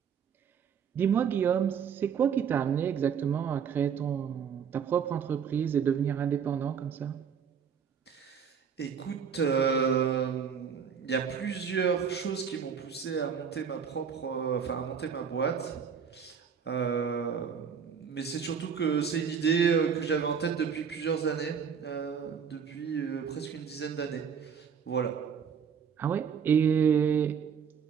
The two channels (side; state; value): left; quieter; 7.1 dB